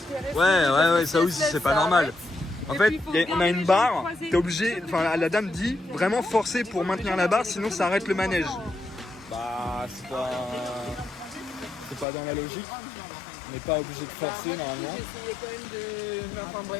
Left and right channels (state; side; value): drops out; right; at 12.1 s